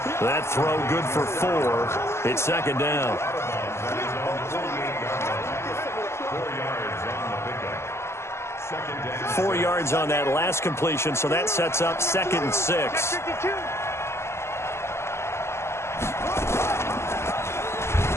That throw good for 4. It's second down. 4 yards on that last completion, so that sets up 2nd and 6.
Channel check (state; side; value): late; right; 0.13 ms